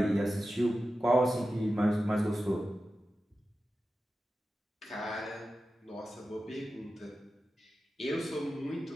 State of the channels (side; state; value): both; normal; correlation 0.93